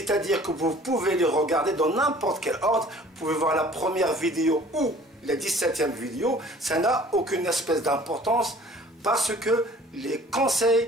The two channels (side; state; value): both; normal; correlation 0.50